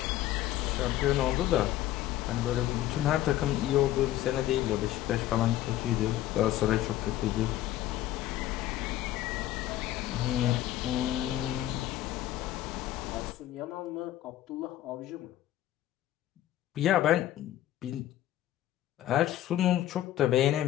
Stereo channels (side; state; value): right; quieter; 13.7 dB